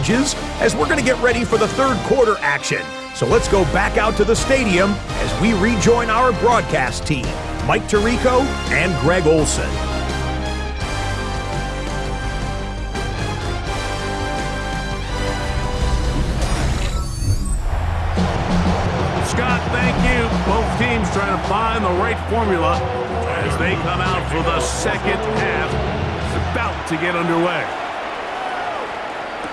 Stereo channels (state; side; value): identical; both; correlation 1.00